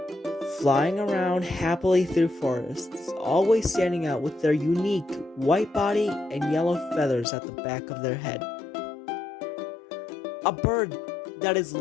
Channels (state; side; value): drops out; right; at 7.2 s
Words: Flying around happily through forests, always standing out with their unique white body and yellow feathers at the back of their head. A bird that is